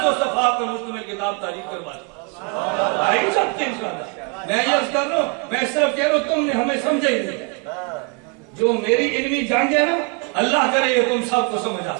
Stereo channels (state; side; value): quieter; left; 31.6 dB